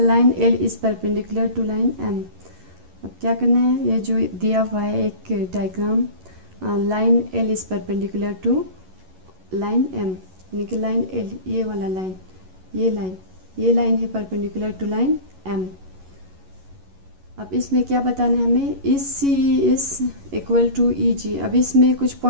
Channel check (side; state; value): left; late; 11 ms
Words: L is perpendicular to line M. अब क्या करना है, ये जो दिया हुआ है एक diagram, line L is perpendicular to line M, यानी कि लाइन एल, ये वाला लाइन, ये लाइन है परपेंडिकुलर टू लाइन एम। अब इसमें क्या बताना है हमें, इस C E is equal to E G. अब इसमें कुछ